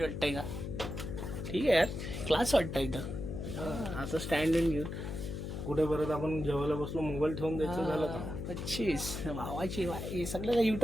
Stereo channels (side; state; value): left; noise; hum, 5 dB below the sound